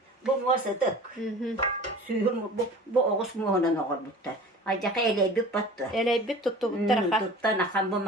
Bu muasatık. Suyum bu oğuz muğunan oğur buttar. Acaka eleybik battı. Eleybik tuttu bu tarafa. Tuttan akan bu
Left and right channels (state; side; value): normal; both; correlation 0.41